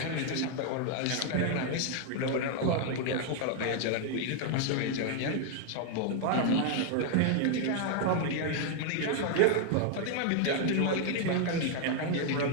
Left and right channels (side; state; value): both; different; correlation 0.00